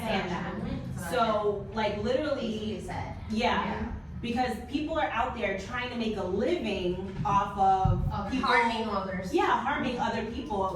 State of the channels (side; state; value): both; identical; correlation 1.00